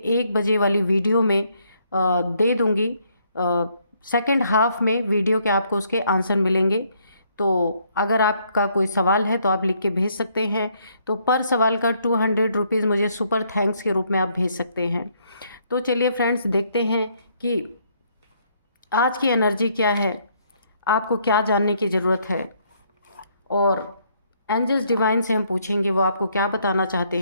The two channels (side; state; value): both; inverted; correlation -0.69